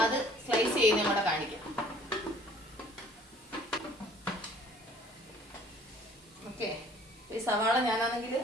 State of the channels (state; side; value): normal; both; correlation 0.55